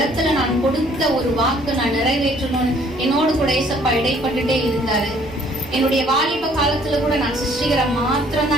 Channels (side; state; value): both; normal; correlation 0.60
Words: நான் கொடுத்த ஒரு வாக்கு நான் நிறைவேற்றணும்னு என்னோடு கூட ஏசப்பா இடைப்பட்டுட்டே இருந்தாரு. என்னுடைய வாலிப காலத்துல கூட நான் சிருஷ்டிகரை மாத்திரம்